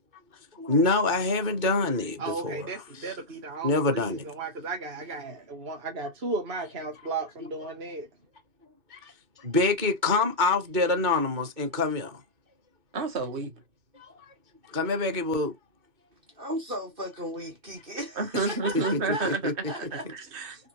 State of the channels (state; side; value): late; left; 2.6 ms